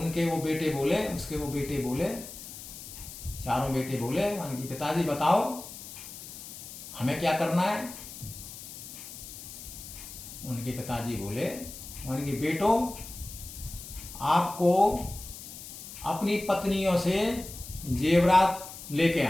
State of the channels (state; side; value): noise; left; hiss, 13 dB below the sound